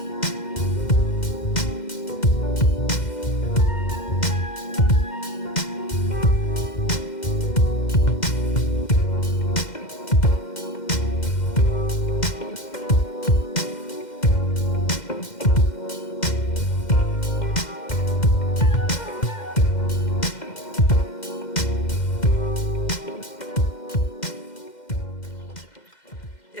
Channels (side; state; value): right; late; 2.1 ms